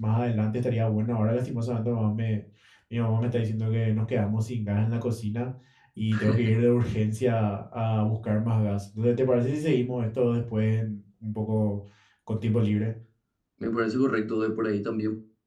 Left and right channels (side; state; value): both; identical; correlation 1.00